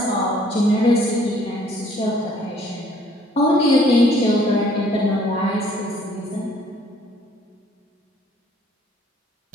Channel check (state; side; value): normal; both; correlation 0.60